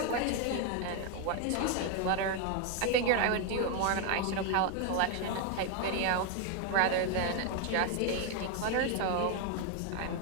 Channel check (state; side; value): different; both; correlation 0.01